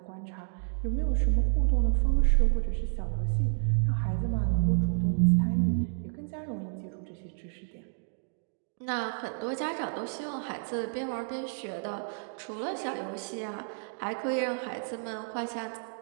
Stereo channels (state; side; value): silent; left; digital silence